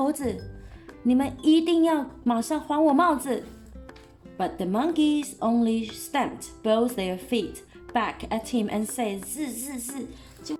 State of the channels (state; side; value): identical; both; correlation 1.00